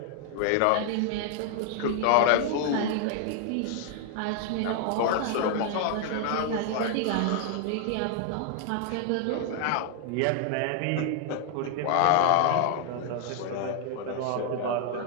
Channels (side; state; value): both; different; correlation 0.00